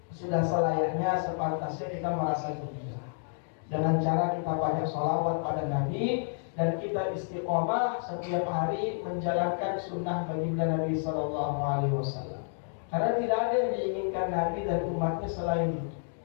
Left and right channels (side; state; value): right; silent; digital silence